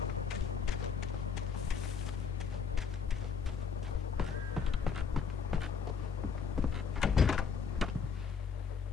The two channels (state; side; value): quieter; right; 6.0 dB